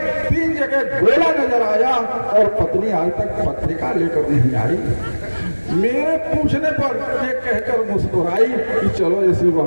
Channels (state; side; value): inverted; both; correlation -1.00